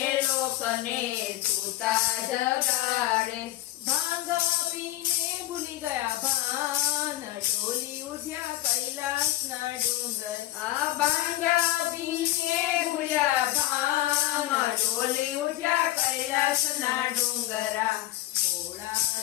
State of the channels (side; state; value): right; quieter; 16.0 dB